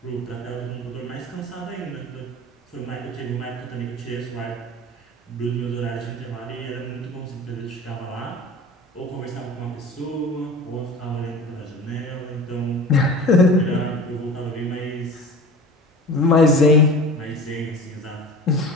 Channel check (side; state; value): both; normal; correlation 0.38